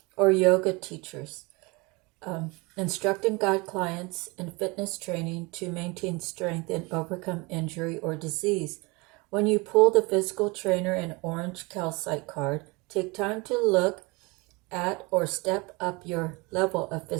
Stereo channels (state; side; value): quieter; left; 26.4 dB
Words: or yoga teachers, instruct and guide clients in fitness training to maintain strength and overcome injury or disease. When you pull the physical trainer and orange calcite card, take time to look at or step up your level of